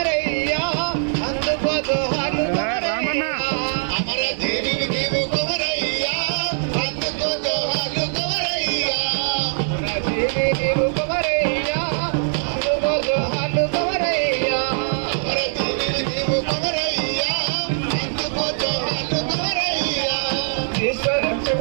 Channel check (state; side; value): silent; left; digital silence